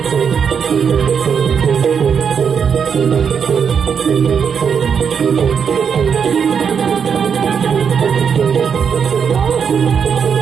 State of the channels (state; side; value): quieter; left; 6.9 dB